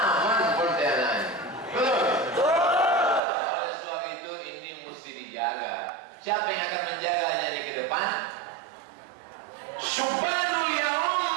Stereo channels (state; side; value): drops out; left; at 3.2 s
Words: Siapa yang akan menjaganya di ke depan? Subhanul Yaum,